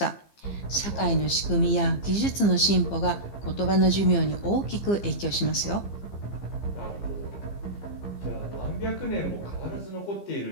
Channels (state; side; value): late; right; 15 ms